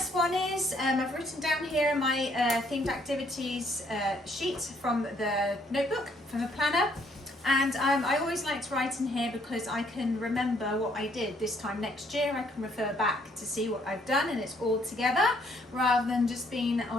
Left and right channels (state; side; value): normal; both; correlation 0.67